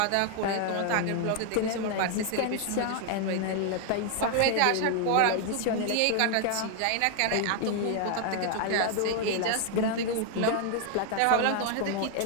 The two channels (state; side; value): different; both; correlation 0.00